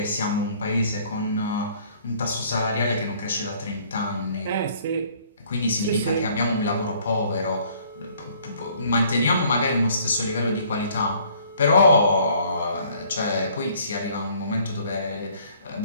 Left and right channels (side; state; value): both; inverted; correlation -0.59